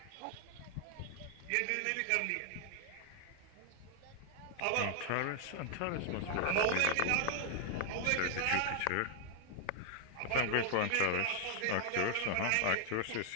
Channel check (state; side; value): different; both; correlation 0.00